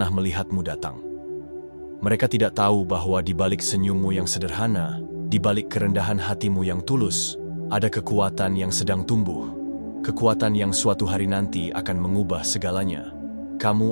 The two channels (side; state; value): both; inverted; correlation -1.00